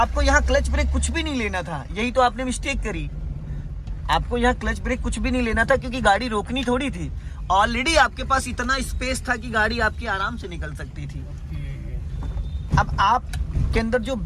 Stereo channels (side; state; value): both; identical; correlation 1.00